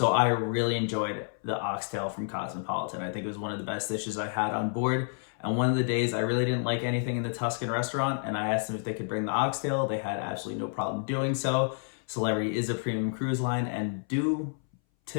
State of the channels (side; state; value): right; silent; 58 dB below the other